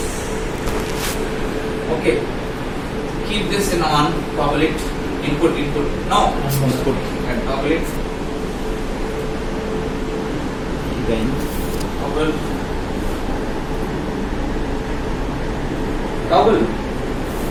Okay. Keep this in on, toggle it. Input. No. Input. And toggle it. Then Toggle. Toggle.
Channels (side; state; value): both; identical; correlation 1.00